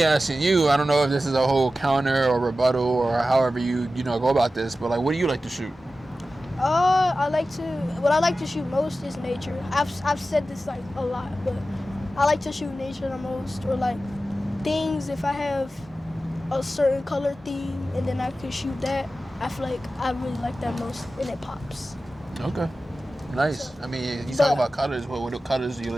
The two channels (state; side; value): normal; both; correlation 0.94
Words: asking you, I don't know if this is a whole counter or rebuttal or however you go about this, but what do you like to shoot? What I like to shoot most is nature. I've said this a lot, but I like to shoot nature the most, or things, if I have a certain color theme and then I can shoot that, I feel like I really like that most, and it pops. Okay. Nice. So, I mean, you talk about colors. What colors do you